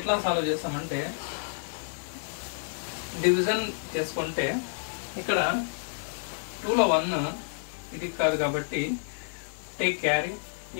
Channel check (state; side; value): silent; right; digital silence